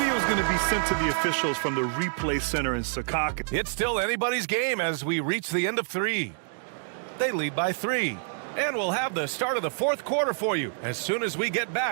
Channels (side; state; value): left; silent; digital silence